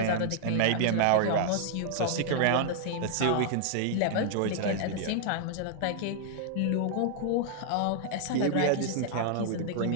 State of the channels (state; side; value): different; both; correlation -0.01